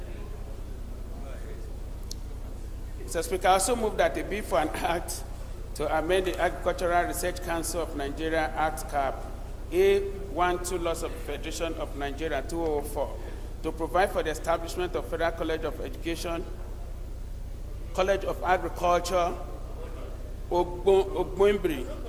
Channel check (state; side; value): identical; both; correlation 1.00